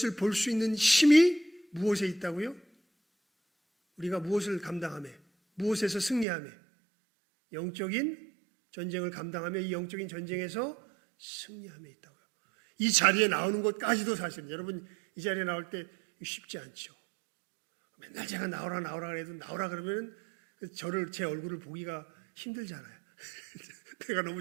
볼 수 있는 힘이 무엇에 있다고요? 우리가 무엇을 감당하며 무엇에서 승리하며 영적인 전쟁을 감당하며 이 영적인 전쟁에서 승리하며 있다고요. 이 자리에 나오는 것까지도 사실은 여러분 이 자리에 나올 때 쉽지 않죠. 맨날 제가 나오라 그래도 나오라 그러면 제 얼굴을 보기가 힘들잖아요. 내가 너무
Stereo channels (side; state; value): left; drops out; at 6.2 s